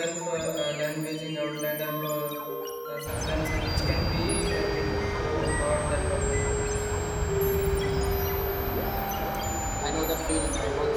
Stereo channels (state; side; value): identical; both; correlation 1.00